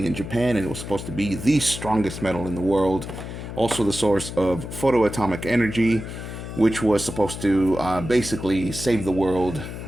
in Japan, and it was supposed to be the strongest metal in the world. Also the source of photoatomic energy, which was supposed to basically save the world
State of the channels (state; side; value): noise; left; hum, 9 dB below the sound